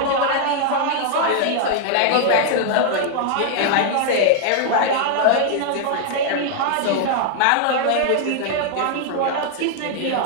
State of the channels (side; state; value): both; different; correlation 0.00